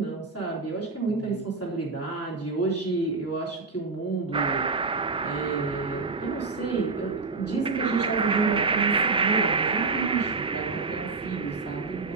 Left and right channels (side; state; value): left; quieter; 4.1 dB